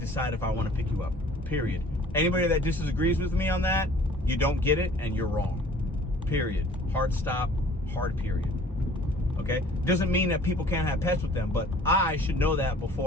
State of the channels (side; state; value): both; normal; correlation 0.51